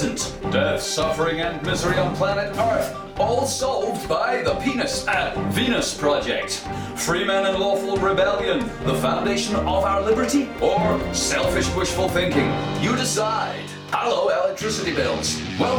Death, suffering and misery on planet Earth, all solved by the Venus Project. Free men and lawful rebellion, the foundation of our liberty, or selfish wishful thinking? You decide. Hello, electricity bills.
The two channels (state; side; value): identical; both; correlation 1.00